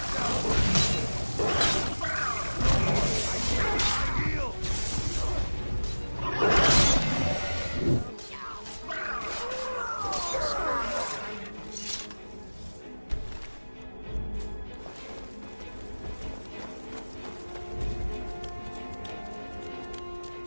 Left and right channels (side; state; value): both; inverted; correlation -1.00